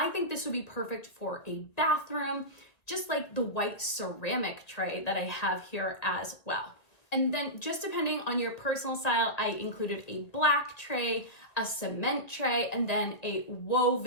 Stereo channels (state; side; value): late; right; 1.9 ms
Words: think this would be perfect for a bathroom, just like the white ceramic tray that I have here as well. And then just depending on your personal style, I included a black tray, a cement tray, and then a